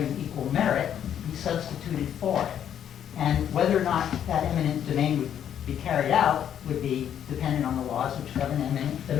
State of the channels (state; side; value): quieter; right; 9.6 dB